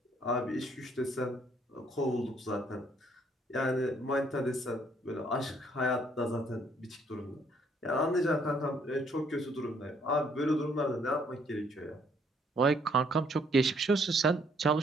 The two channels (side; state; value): both; normal; correlation 0.66